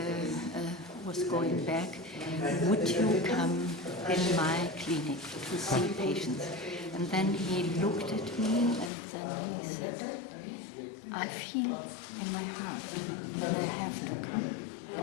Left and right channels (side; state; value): right; drops out; at 8.9 s